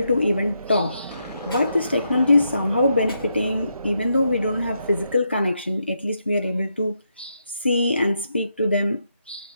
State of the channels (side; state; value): both; inverted; correlation -0.81